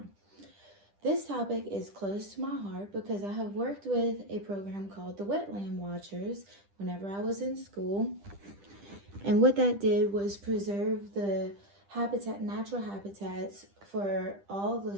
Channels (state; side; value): late; left; 10 ms